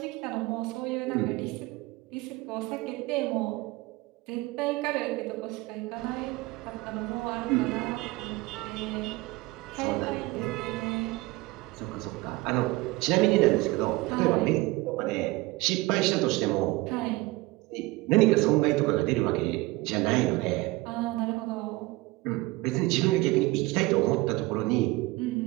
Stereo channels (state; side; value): quieter; left; 21.3 dB